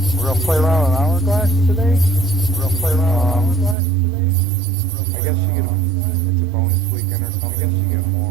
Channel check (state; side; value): drops out; left; at 3.8 s